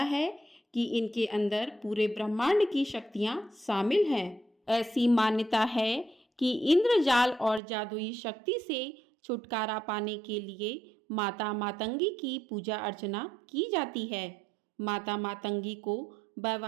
है कि इनके अंदर पूरे ब्रह्मांड की शक्तियां शामिल हैं। ऐसी मान्यता है कि इंद्रजाल और जादुई शक्ति से छुटकारा पाने के लिए माता मातंगी की पूजा अर्चना की जाती है। माता मातंगी को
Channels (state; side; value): drops out; left; at 7.6 s